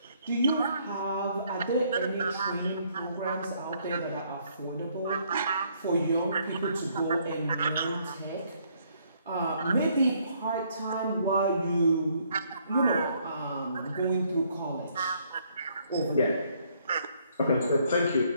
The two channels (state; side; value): inverted; both; correlation -0.67